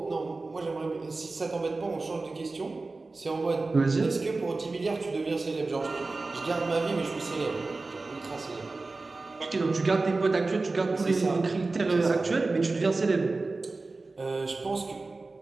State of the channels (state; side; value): quieter; left; 3.5 dB